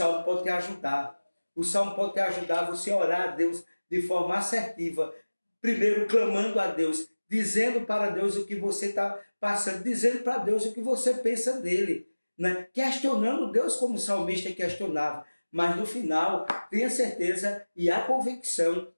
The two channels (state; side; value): inverted; both; correlation -1.00